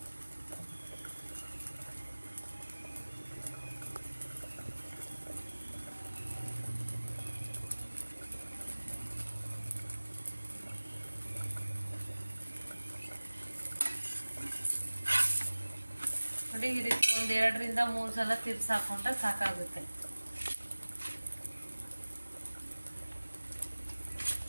ನೋಡಿ ಈ ರೀತಿ 1-2 ರಿಂದ 3 ಸಲ ತಿರ್ಸಿ ಹಾಕೊಂಡ್ರೆ ಸಾಕಾಗುತ್ತೆ.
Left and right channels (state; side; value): inverted; both; correlation -1.00